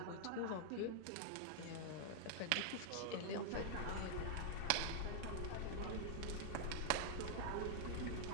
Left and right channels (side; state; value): both; different; correlation -0.01